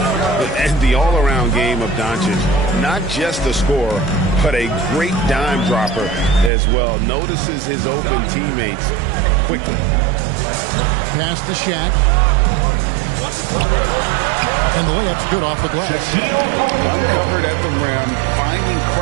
And the all-around game of Doncic, not just a scorer, but a great dime dropper as well. Notices his open teammates quickly. Pass to Shaq. And the layup's good off the glass. Uncovered at the rim, finding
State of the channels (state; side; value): drops out; left; at 6.5 s